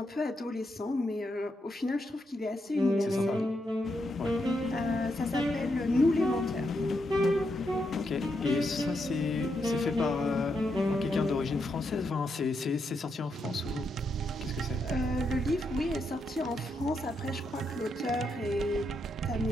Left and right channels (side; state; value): both; normal; correlation 0.81